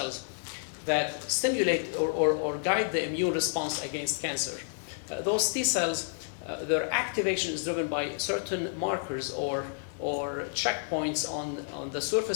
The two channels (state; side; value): silent; right; digital silence